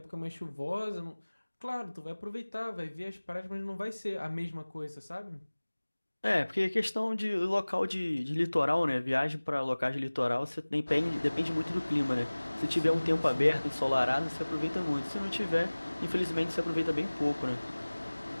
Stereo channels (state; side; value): inverted; both; correlation -1.00